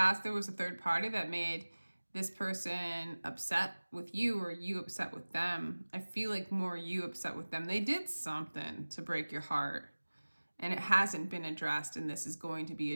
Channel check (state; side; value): inverted; both; correlation -1.00